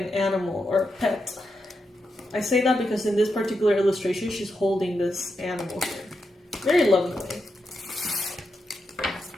animal or a pet. I say that because in this particular illustration, she's holding this animal here. Very lovingly.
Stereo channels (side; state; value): both; normal; correlation 0.86